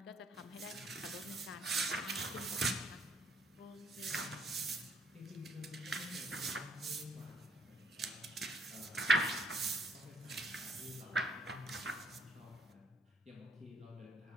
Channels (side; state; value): both; normal; correlation 0.68